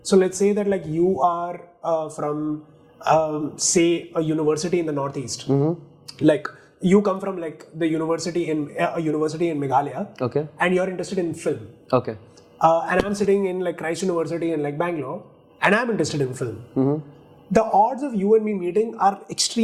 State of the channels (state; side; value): identical; both; correlation 1.00